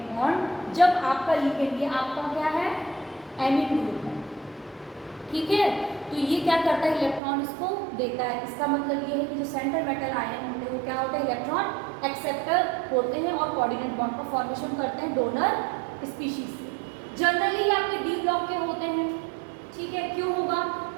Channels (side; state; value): left; drops out; at 7.2 s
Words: बॉन्ड, जब आपका लिगेंड, ये आपका क्या है, एमीन ग्रुप है। ठीक है, तो ये क्या करता है, इलेक्ट्रॉन इसको देता है। इसका मतलब ये है कि जो सेंट्रल मेटल आयन होते हैं वो क्या होते हैं, इलेक्ट्रॉन एक्सेप्टर होते हैं और कोऑर्डिनेट बॉन्ड का फॉर्मेशन करते हैं डोनर स्पीशीज से। जनरली आपके डी ब्लॉक के होते हैं। ठीक है, क्यों होगा?